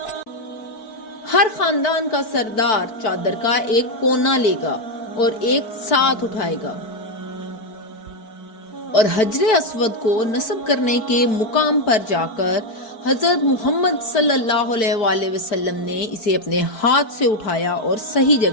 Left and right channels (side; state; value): right; late; 4.6 ms